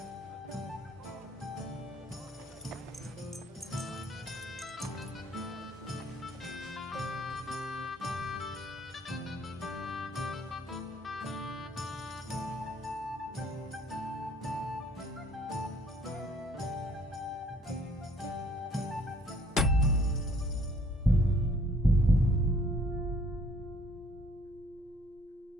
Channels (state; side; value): normal; both; correlation 0.59